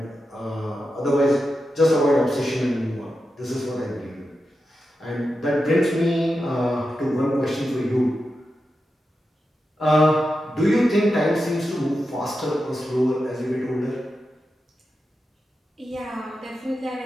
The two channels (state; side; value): normal; both; correlation 0.89